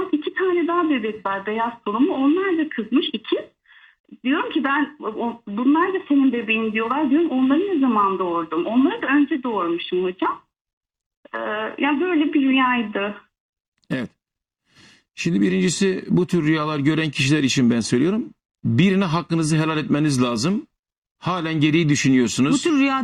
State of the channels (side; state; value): both; identical; correlation 1.00